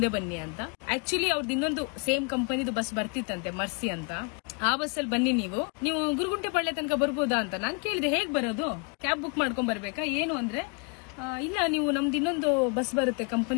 ಬನ್ನಿ ಅಂತ. ಆಕ್ಚುಲಿ ಅವ್ರದ್ದು ಇನ್ನೊಂದು ಸೇಮ್ ಕಂಪನಿದು ಬಸ್ ಬರ್ತಿತ್ತಂತೆ, ಮರ್ಸಿ ಅಂತ. ಆ ಬಸ್ಸಲ್ಲಿ ಬನ್ನಿ ನೀವು ಗುರುಗುಂಟೆ ಪಾಳ್ಯ ತನಕ ಬರ್ಬೋದಾ ಅಂತ ನಾನು ಕೇಳಿದೆ. ಹೇಗ್ ಬರೋದು, ಕ್ಯಾಬ್ ಬುಕ್ ಮಾಡ್ಕೊಂಡ್ ಬರ್ಬೇಕಾ ಏನು ಅಂದ್ರೆ, ಇಲ್ಲ ನೀವು ನಮ್ದು ಇನ್ನೊಂದು ಬಸ್ ಬರುತ್ತೆ,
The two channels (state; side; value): quieter; right; 35.0 dB